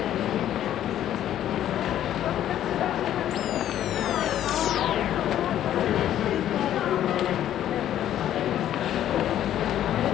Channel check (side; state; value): right; quieter; 11.5 dB